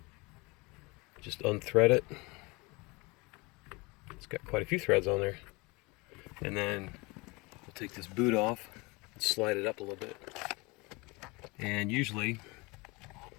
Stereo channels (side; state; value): right; quieter; 25.9 dB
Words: Just unthread it. It's got quite a few threads on there. And then we'll take this boot off and slide it up a little bit. And usually